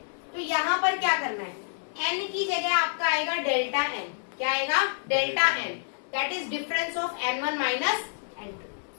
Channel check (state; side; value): silent; right; digital silence